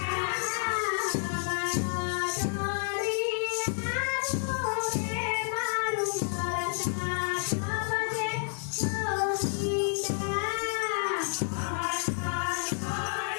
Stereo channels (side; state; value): right; silent; 58 dB below the other